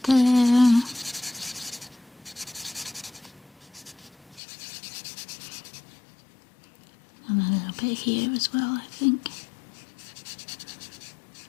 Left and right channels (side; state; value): right; drops out; at 4.4 s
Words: there. And a little bit here as well, I think.